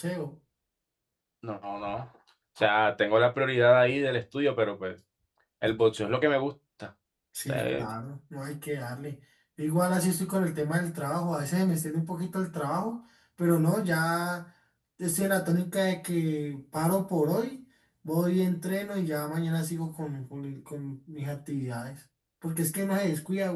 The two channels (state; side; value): identical; both; correlation 1.00